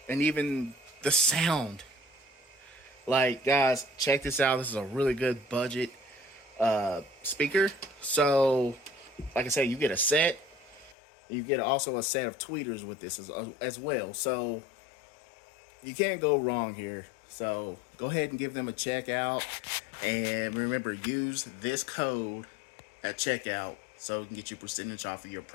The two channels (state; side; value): drops out; right; at 11.0 s